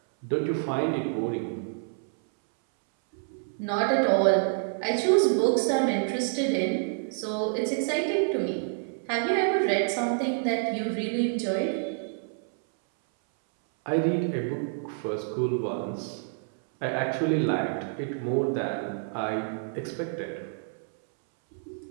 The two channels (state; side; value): silent; left; 59 dB below the other